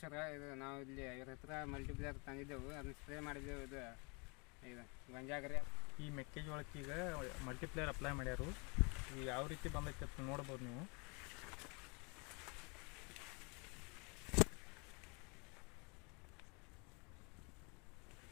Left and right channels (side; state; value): right; quieter; 31.7 dB